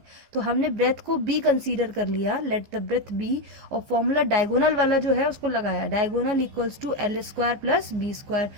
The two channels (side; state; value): left; late; 15 ms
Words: तो हमने ब्रेथ को बी कंसीडर कर लिया, लेट द ब्रेथ बी, और फॉर्मूला डायगोनल वाला जो है उसको लगाया. Diagonal equals to L square plus B square.